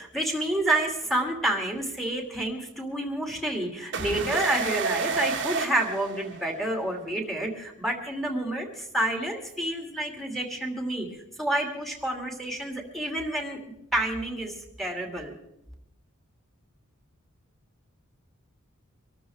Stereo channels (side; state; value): both; normal; correlation 0.52